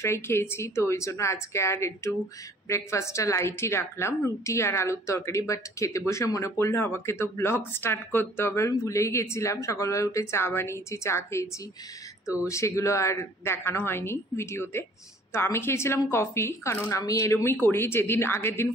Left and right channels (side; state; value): both; normal; correlation 0.54